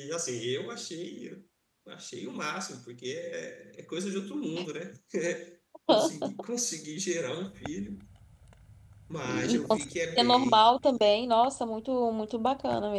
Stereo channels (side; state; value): both; identical; correlation 1.00